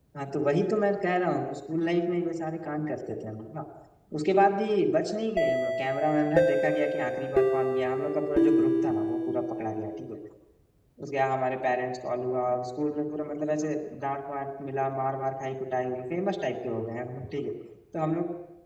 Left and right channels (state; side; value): identical; both; correlation 1.00